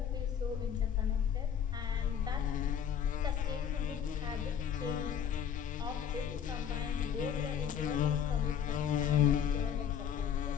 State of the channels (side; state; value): right; quieter; 8.4 dB